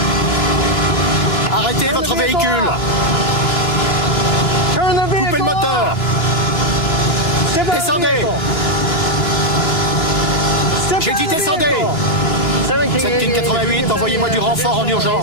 Arrêtez votre véhicule! Coupez le moteur! Descendez! J'ai dit descendez! 7 King 88, envoyez-moi du renfort en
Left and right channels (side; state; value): right; late; 3.0 ms